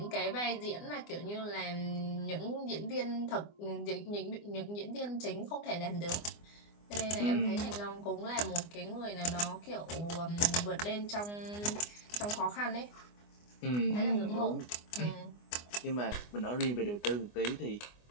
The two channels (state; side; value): late; right; 24 ms